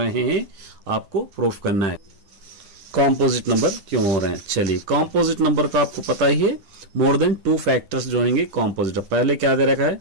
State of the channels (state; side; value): late; left; 9.9 ms